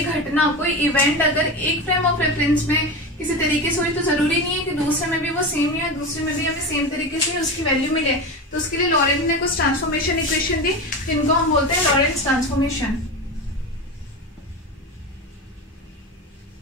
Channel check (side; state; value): both; normal; correlation 0.23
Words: घटना, कोई इवेंट अगर एक फ्रेम ऑफ रेफरेंस में किसी तरीके से हुई तो जरूरी नहीं है कि दूसरे में भी वो सेम ही है, दूसरे में भी हमें सेम तरीके से उसकी वैल्यू मिले। तो उसके लिए लॉरेंट ने कुछ ट्रांसफॉर्मेशन इक्वेशन दी, जिनको हम बोलते हैं लॉरेंट्स ट्रांसफॉर्मेशन।